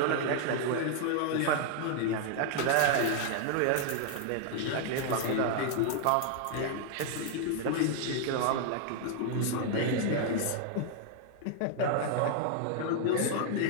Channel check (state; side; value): different; both; correlation 0.00